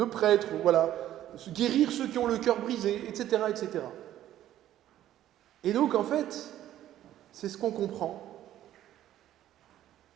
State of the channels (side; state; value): left; quieter; 12.5 dB